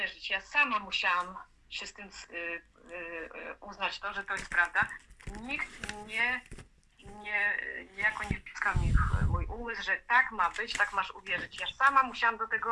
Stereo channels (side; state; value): both; identical; correlation 1.00